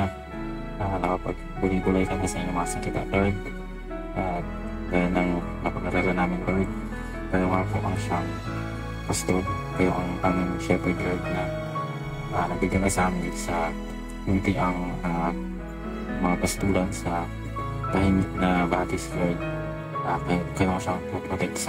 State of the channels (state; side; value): identical; both; correlation 1.00